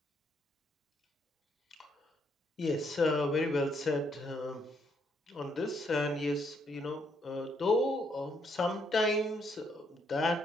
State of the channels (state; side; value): normal; both; correlation 0.73